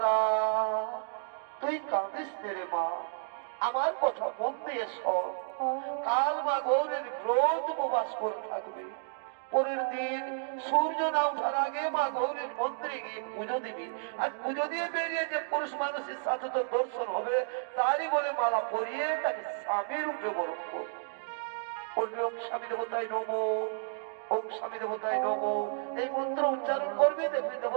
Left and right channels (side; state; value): left; silent; digital silence